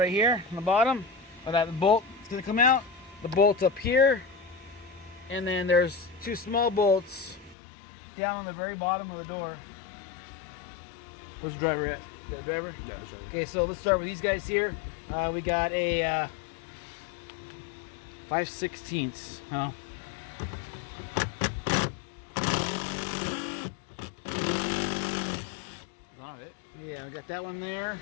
here on the bottom. That bolt is gonna come out. The bolt's up here, and then there's 2 small bolts down on the very bottom of the door. Where's the driver at? You got a driver? Yeah, sure. Okay, so let's start with these guys here. We got a 5/16. Oh. Got it. Yeah, we got that one there.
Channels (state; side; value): drops out; right; at 7.6 s